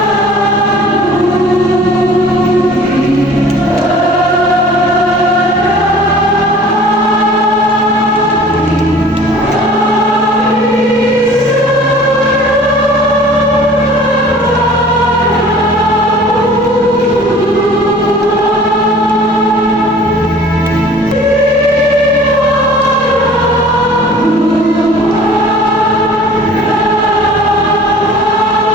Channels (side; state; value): both; normal; correlation 0.48